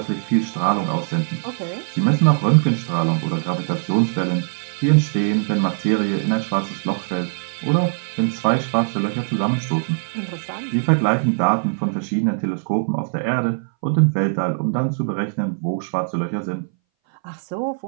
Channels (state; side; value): silent; left; 61 dB below the other